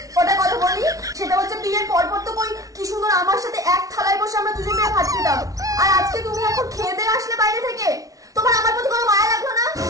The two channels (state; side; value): late; left; 0.17 ms